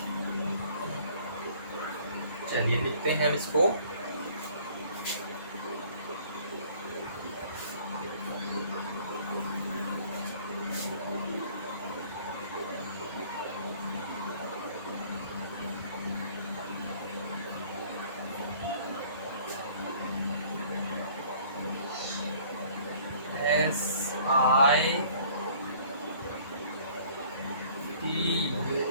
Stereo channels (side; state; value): both; inverted; correlation -0.54